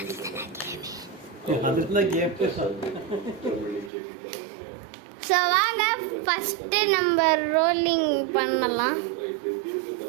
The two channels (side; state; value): left; drops out; at 3.9 s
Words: ஸோ வாங்க ஃபஸ்ட்டு நம்ம ரோலிங் பண்ணலாம்.